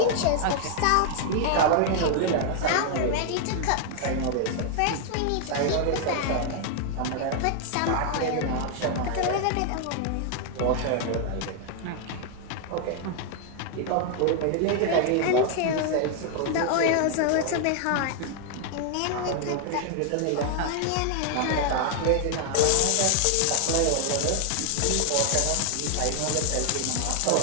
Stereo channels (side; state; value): both; different; correlation 0.00